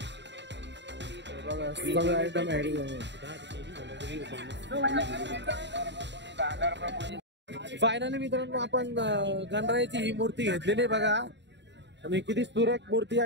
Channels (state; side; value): late; left; 0.52 ms